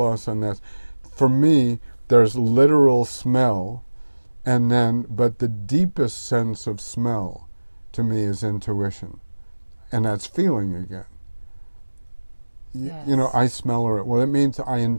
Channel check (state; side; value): inverted; both; correlation -1.00